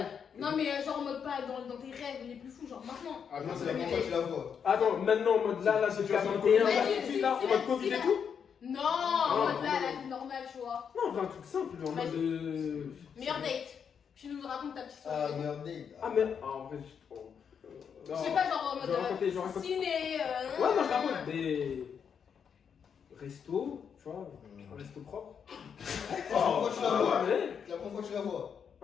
non, mais genre en mode pas dans tes rêves les plus fous, genre maintenant. Ah non, c'est la première fois que tu la vois. Attends, maintenant en mode là, c'est 41, là, tout de suite, là, en mode Covid et tout? Non, en mode là, la vie normale, tu vois. Non, on veut un truc simple, en mode. Meilleur date. Tu nous racontes ta petite Ah, histoire. merde. Ah, mais. Ah, en vrai, Je sais pas, genre en Je vais raconter, mode ciné. Ouais, non, je raconte des. Restos, tu vois, un resto propre. C'est la première fois que tu la vois. Ouais. C'est la première fois que tu la vois.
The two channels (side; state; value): right; quieter; 7.2 dB